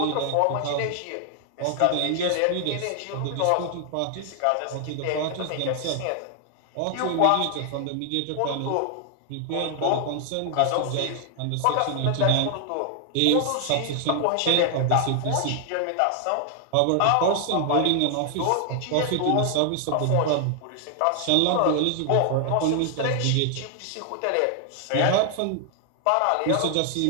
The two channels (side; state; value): both; different; correlation 0.00